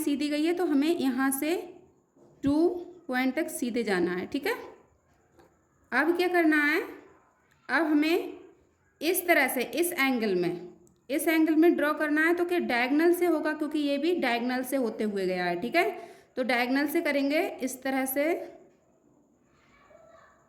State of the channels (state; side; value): identical; both; correlation 1.00